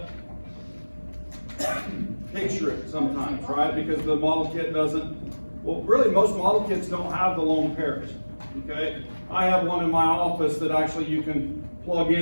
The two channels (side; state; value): both; inverted; correlation -1.00